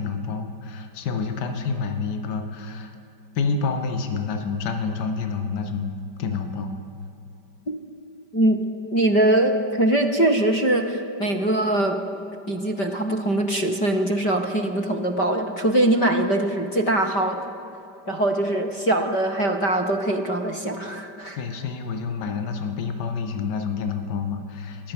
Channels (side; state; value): right; late; 5.1 ms